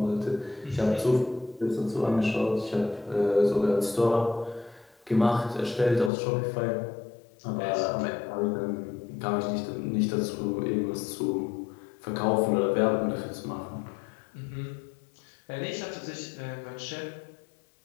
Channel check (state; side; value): drops out; right; at 6.1 s